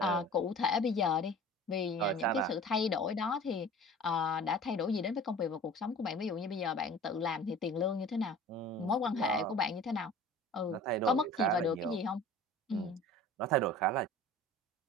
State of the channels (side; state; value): both; normal; correlation 0.43